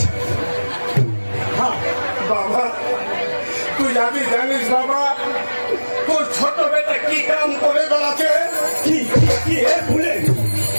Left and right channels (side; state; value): both; inverted; correlation -1.00